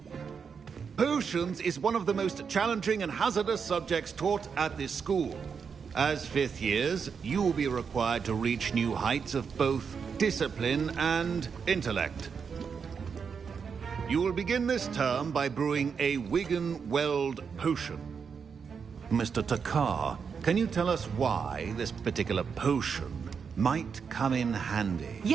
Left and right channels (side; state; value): left; quieter; 6.2 dB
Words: Potions is one of the most challenging and hazardous subjects taught at this school. As fifth years, you will be required to reach new heights of both discipline and intellect. You will begin this term by brewing a Wigan-Weld potion. Mr. Takar, can you tell us why this particular potion might come in handy?